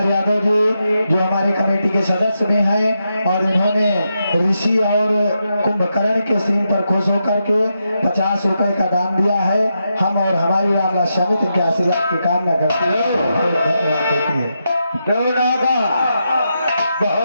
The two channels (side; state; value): both; inverted; correlation -0.84